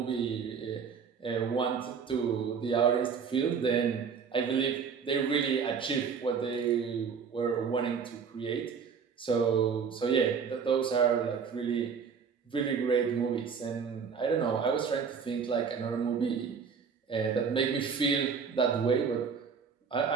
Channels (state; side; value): quieter; left; 6.2 dB